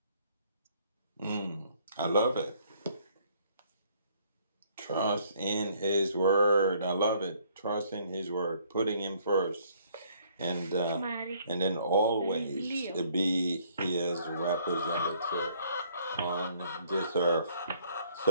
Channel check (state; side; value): inverted; both; correlation -0.64